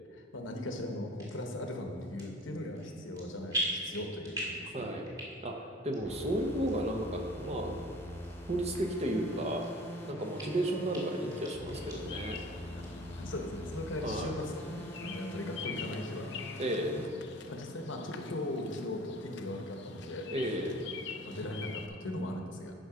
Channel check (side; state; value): both; normal; correlation 0.45